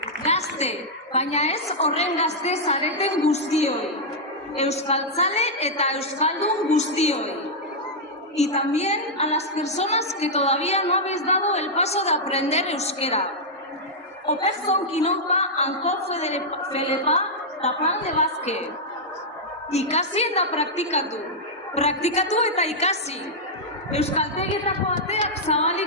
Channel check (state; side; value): normal; both; correlation -0.06